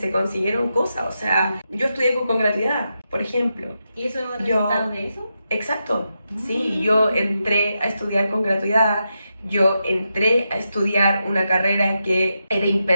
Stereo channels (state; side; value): inverted; both; correlation -0.86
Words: consiguieron cosas. O sea, yo estudié con gratuidad, por ejemplo. ¿Y eso es el resultado de eso? Exacto, sí, yo entré a estudiar con gratuidad. Yo entré a estudiar una carrera que era